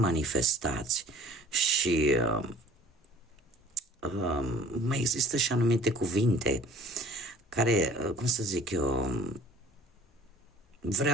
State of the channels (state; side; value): normal; both; correlation 0.49